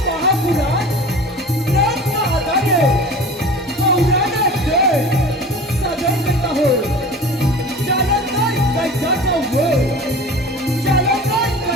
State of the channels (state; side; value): normal; both; correlation 0.38